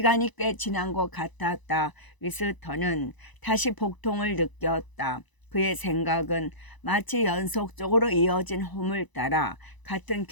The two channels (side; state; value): right; late; 1.0 ms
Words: 꽤 지난 것 같았다. 위스턴은 다시 복통을 느꼈다. 그의 생각은 마치 연속적으로 이어진 홈을 따라 같은